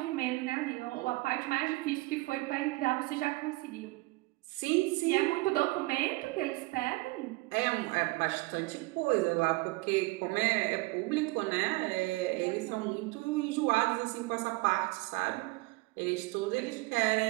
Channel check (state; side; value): quieter; left; 23.4 dB